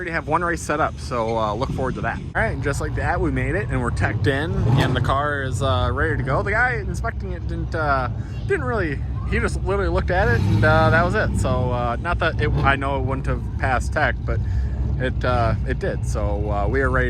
have one race set up, so look forward to that. All right, and just like that, we made it, and we're teched in, and the car is ready to go. The guy inspecting it didn't really he just literally looked at it, and that was it. So not that I know it wouldn't have passed tech, but it did. So we are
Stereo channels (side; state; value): both; identical; correlation 1.00